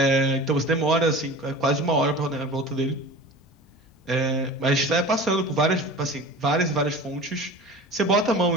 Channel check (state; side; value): normal; both; correlation 0.37